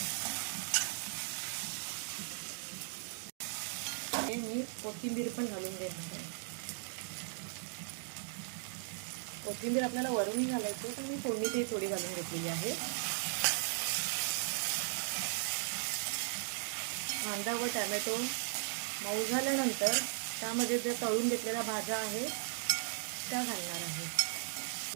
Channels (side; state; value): left; silent; digital silence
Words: मी कोथिंबीर पण घालून घेणार आहे। कोथिंबीर आपल्याला वरूनही घालायची पण मी फोडणीतही थोडी घालून घेतलेली आहे। कांदा व टोमॅटो मऊ झाल्यानंतर त्यामध्ये जे तळून घेतलेल्या भाज्या आहेत त्या घालणार आहे।